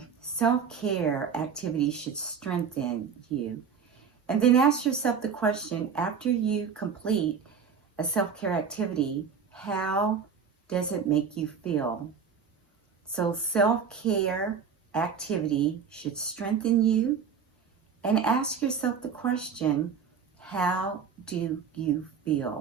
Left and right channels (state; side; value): quieter; left; 6.5 dB